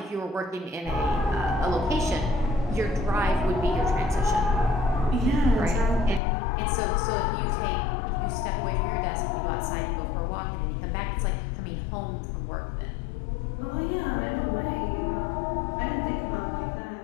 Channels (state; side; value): drops out; right; at 6.2 s